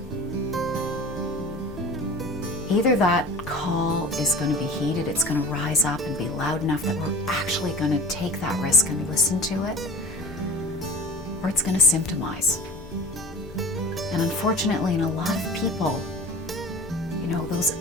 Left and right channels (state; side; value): normal; both; correlation 0.39